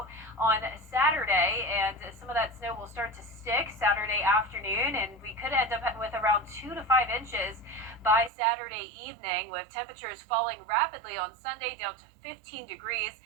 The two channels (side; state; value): left; drops out; at 8.3 s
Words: on Saturday, and some of that snow will start to stick Saturday afternoon, and we could end up with around 2 to 5 inches by Saturday evening, with temperatures falling rapidly on Sunday down to 15 degrees,